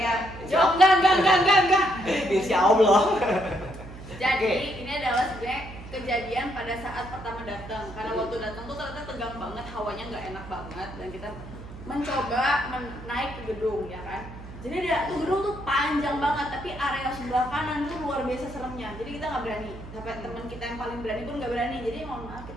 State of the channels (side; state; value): right; noise; hum, 14 dB below the sound